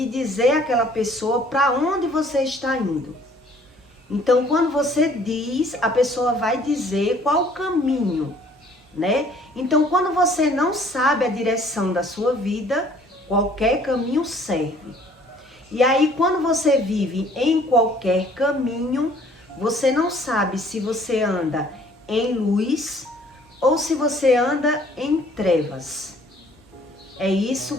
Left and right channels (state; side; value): normal; both; correlation 0.57